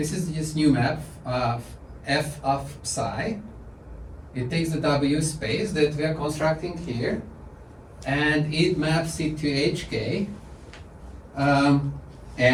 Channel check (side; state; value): both; identical; correlation 1.00